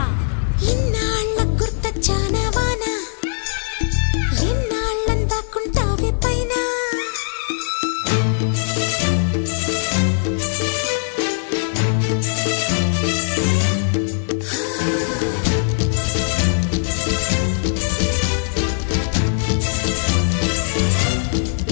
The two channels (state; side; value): silent; right; 66 dB below the other